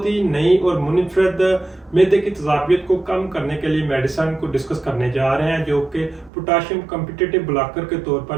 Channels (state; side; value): drops out; left; at 6.3 s